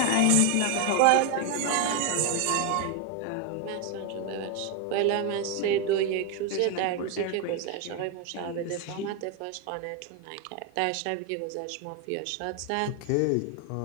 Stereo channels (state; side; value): different; both; correlation 0.01